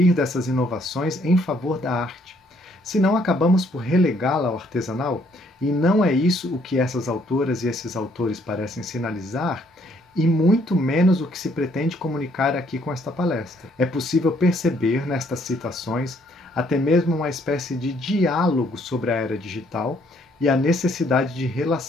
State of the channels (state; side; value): normal; both; correlation 0.67